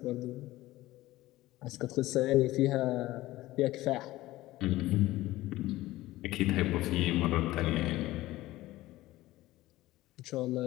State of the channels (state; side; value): quieter; right; 17.1 dB